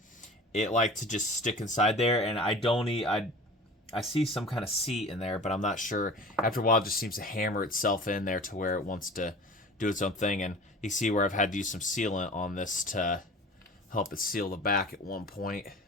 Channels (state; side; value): normal; both; correlation 0.40